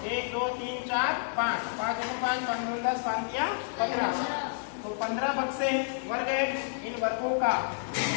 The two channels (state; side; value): silent; right; digital silence